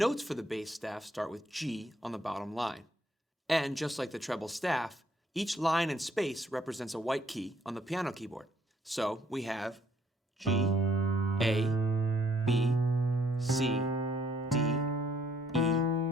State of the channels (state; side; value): normal; both; correlation 0.66